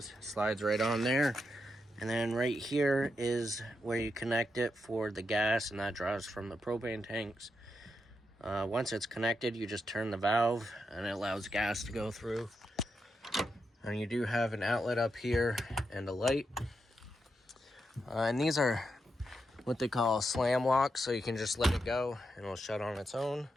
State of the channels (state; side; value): normal; both; correlation 0.85